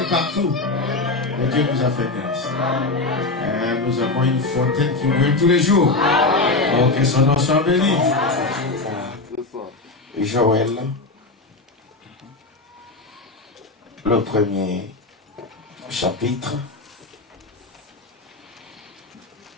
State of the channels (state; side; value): quieter; right; 3.4 dB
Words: partout. Mais Dieu nous a fait grâce. Nous avons une fontaine qui brûle tous les jours. Oh, que son nom soit béni. Joël, le premier chapitre.